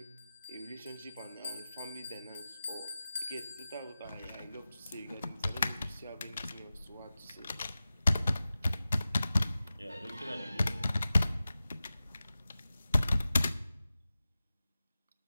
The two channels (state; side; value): inverted; both; correlation -0.95